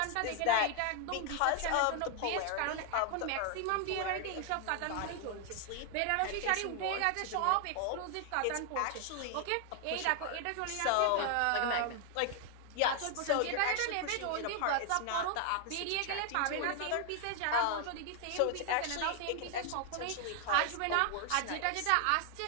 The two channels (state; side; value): different; both; correlation 0.00